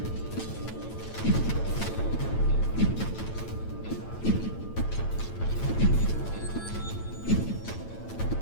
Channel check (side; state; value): right; late; 9.0 ms